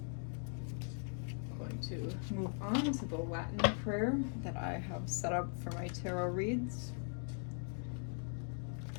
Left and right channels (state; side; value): silent; right; 51 dB below the other